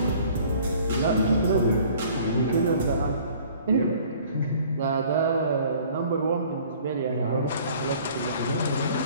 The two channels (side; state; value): both; inverted; correlation -0.53